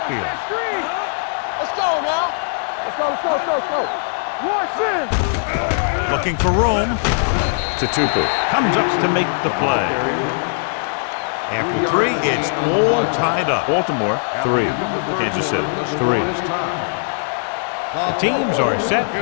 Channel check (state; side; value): silent; right; digital silence